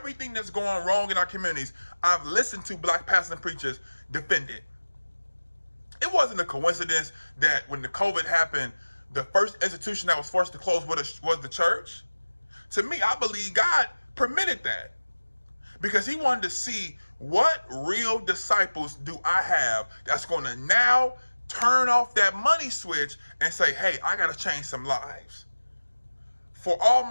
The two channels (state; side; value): inverted; both; correlation -1.00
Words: that's going wrong in our communities. I've listened to black pastors and preachers defend it. It wasn't a coincidence that when the COVID happened, the first institution that was forced to close was the church. To me, I believe God permitted that, because he wanted to see what real disciples do I have that's going to now turn off that money switch and say, hey, I got to change some lives. For